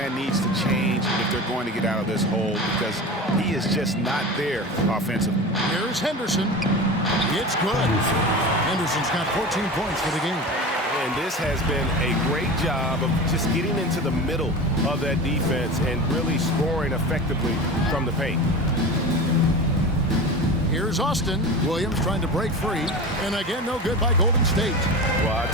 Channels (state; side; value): normal; both; correlation 0.30